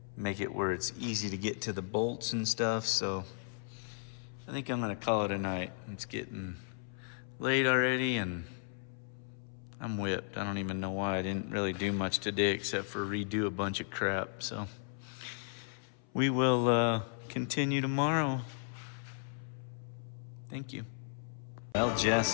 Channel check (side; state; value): right; silent; 54 dB below the other